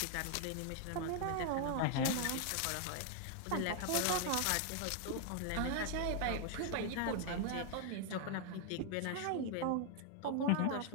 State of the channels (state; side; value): different; both; correlation 0.00